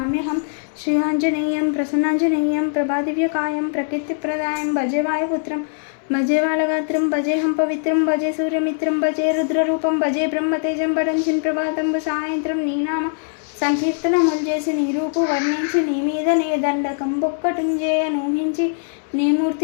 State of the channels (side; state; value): right; silent; 64 dB below the other